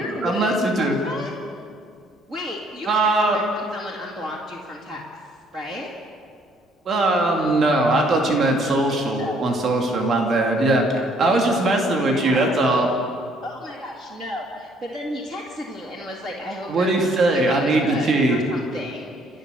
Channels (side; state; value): both; normal; correlation 0.64